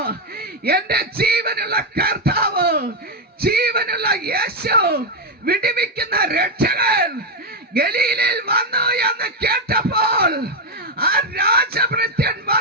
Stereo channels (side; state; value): both; normal; correlation 0.04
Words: എന്റെ ജീവനുള്ള കർത്താവ്, ജീവനുള്ള യേശു, വിടുവിക്കുന്ന രക്ഷകൻ ഗലീലയിൽ വന്നു എന്ന് കേട്ടപ്പോൾ ആ രാജഭൃത്യൻ